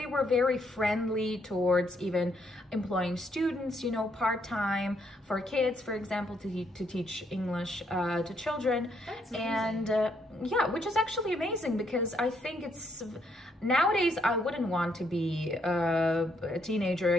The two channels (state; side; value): normal; both; correlation 0.73